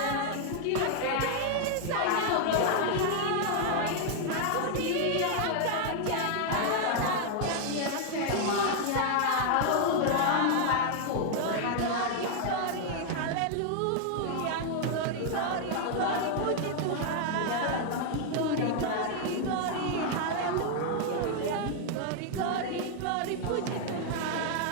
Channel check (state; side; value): different; both; correlation 0.00